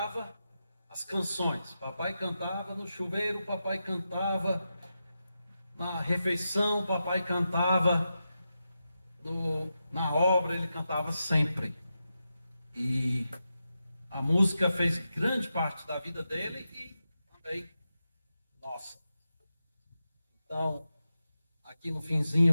as canções. Papai cantava no chuveiro, papai cantava na refeição, papai cantava na obra, ele cantava sempre. E a música fez grande parte da vida dele e também nossa. Então, aqui no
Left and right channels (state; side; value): inverted; both; correlation -0.89